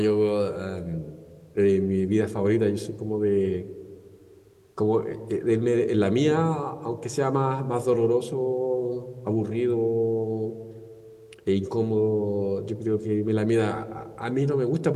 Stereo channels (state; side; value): identical; both; correlation 1.00